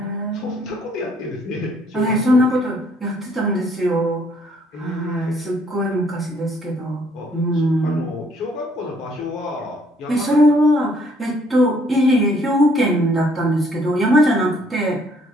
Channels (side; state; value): both; normal; correlation 0.65